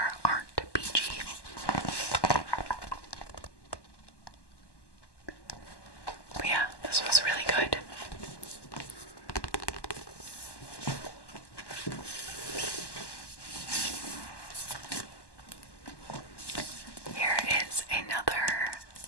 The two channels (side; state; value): right; late; 1.1 ms